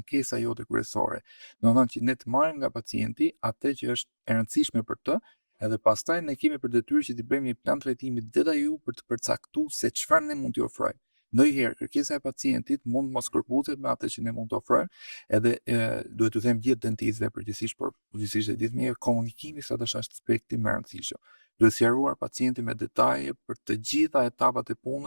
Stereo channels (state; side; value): inverted; both; correlation -1.00